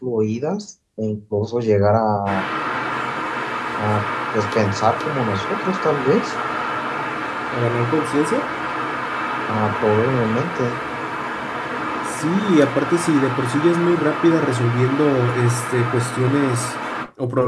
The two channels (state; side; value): identical; both; correlation 1.00